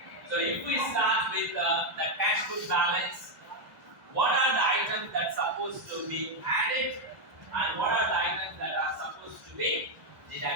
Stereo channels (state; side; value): late; left; 2.0 ms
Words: So if we start with the cash book balance, what are the items that are supposed to be added and what are the items that are supposed to be